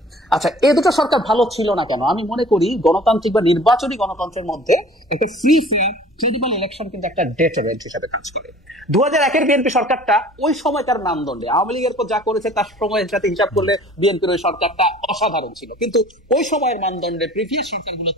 আচ্ছা, এই দুটো সরকার ভালো ছিল না কেন? আমি মনে করি গণতান্ত্রিক বা নির্বাচনী গণতন্ত্রের মধ্যে একটা ফ্রি ফেয়ার ক্রেডিবল ইলেকশন কিন্তু একটা ডেটারেন্ট হিসেবে কাজ করে। 2001-এর বিএনপি সরকারটা ওই সময় তার মানদণ্ডে, আওয়ামী লীগের পর যা করেছে তার সময়ের সাথে হিসাব করলে বিএনপির ওই সরকারটা অসাধারণ ছিল, কিন্তু ওই সময়ের মানদণ্ডে প্রিভিয়াস সরকারগুলোর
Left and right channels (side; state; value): both; normal; correlation 0.48